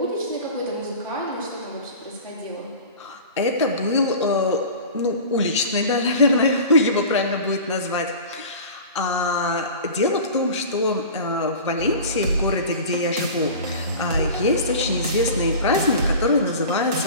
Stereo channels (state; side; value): inverted; both; correlation -0.36